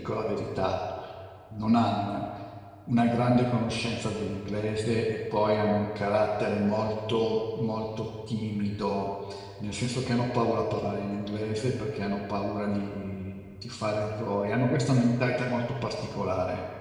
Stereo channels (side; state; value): both; identical; correlation 1.00